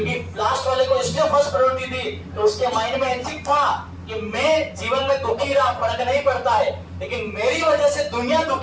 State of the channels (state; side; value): identical; both; correlation 1.00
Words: लास्ट वाले को इसलिए फर्स्ट प्रायोरिटी दी तो उसके माइंड में एथिक था कि मैं जीवन में दुखी रहा, फर्क नहीं पड़ता है, लेकिन मेरी वजह से दुनिया